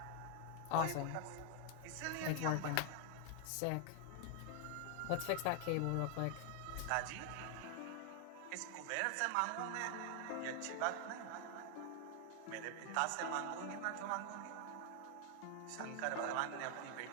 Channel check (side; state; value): both; different; correlation 0.00